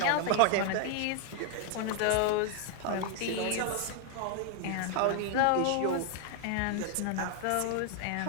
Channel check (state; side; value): different; both; correlation 0.00